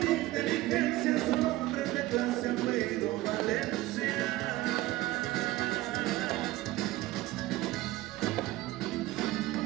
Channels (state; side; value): quieter; left; 17.5 dB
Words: inteligencia, son hombres de clase, apellido Valencia.